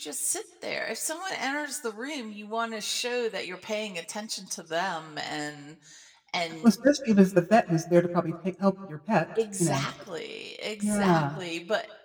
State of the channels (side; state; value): both; identical; correlation 1.00